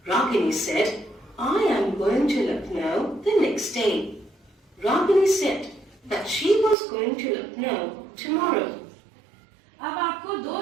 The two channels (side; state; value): left; drops out; at 6.8 s